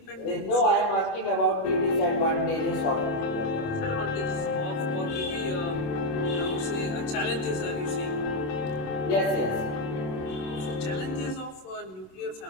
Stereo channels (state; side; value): late; right; 27 ms